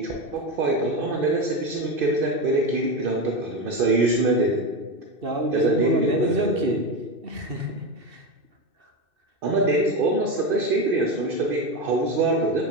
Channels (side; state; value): left; late; 2.6 ms